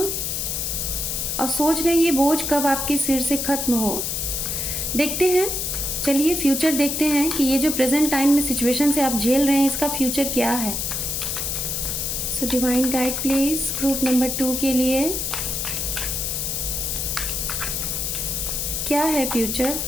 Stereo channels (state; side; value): noise; left; hiss, 1 dB below the sound